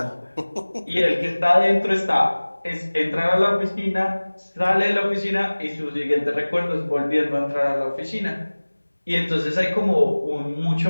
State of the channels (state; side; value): inverted; both; correlation -1.00